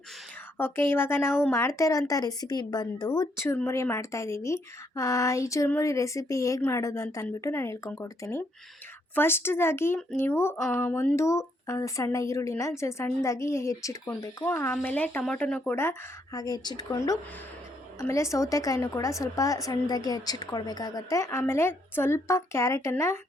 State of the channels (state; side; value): normal; both; correlation 0.73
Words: ಓಕೆ, ಇವಾಗ ನಾವು ಮಾಡ್ತಾ ಇರೋಂಥ ರೆಸಿಪಿ ಬಂದು ಚುರುಮುರಿ ಮಾಡ್ತಾಯಿದ್ದೀವಿ. ಈ ಚುರುಮುರಿ ರೆಸಿಪಿ ಹೇಗೆ ಮಾಡೋದು ಅಂತ ಅಂದ್ಬಿಟ್ಟು ನಾನು ಹೇಳ್ಕೊಂಡ್ಕೊಡ್ತೀನಿ. ಫಸ್ಟ್ದಾಗಿ ನೀವು ಒಂದು ಸಣ್ಣ ಈರುಳ್ಳಿನ ಸಣ್ಣದಾಗಿ ಹೆಚ್ಚಿಟ್ಕೊಳ್ಬೇಕು. ಆಮೇಲೆ ಟೊಮೊಟೊನೂ ಕೂಡ ಹಾಗೆ ಹೆಚ್ಚಿಟ್ಕೊಂಡು, ಆಮೇಲೆ ಸೌತೆಕಾಯಿನೂ ಕೂಡ ಸ್ವಲ್ಪ ಸಣ್ಣದಾಗಿ ಹೆಚ್ಚಿಟ್ಕೊಳ್ಬೇಕಾಗತ್ತೆ. ಆಮೇಲೆ ಸ್ವಲ್ಪ ಕ್ಯಾರೆಟನ್ನು